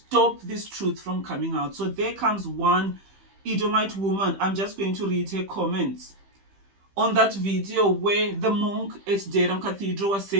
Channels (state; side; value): late; left; 15 ms